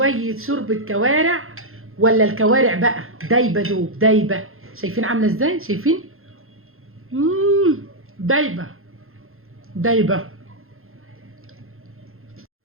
شوربه كوارع. ولا الكوارع بقى دايبه دوب دايبه، شايفين عامله ازاي؟ شايفين؟ دايبه دايبه.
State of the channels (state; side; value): late; left; 0.61 ms